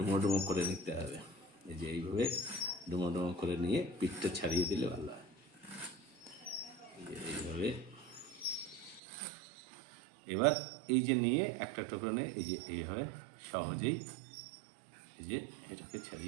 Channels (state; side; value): drops out; left; at 9.0 s